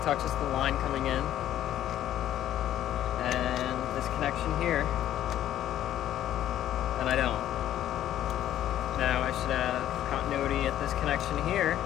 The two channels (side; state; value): right; quieter; 12.1 dB